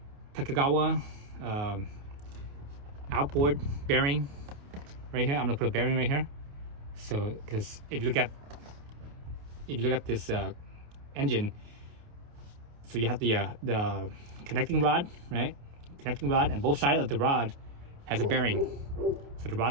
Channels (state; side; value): late; left; 28 ms